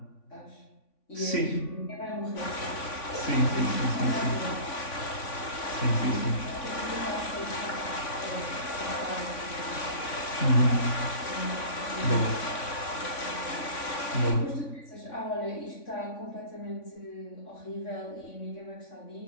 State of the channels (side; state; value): right; late; 3.5 ms